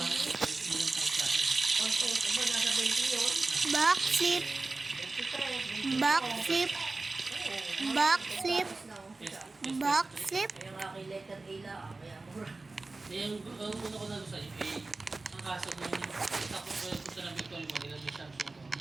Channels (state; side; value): quieter; left; 3.4 dB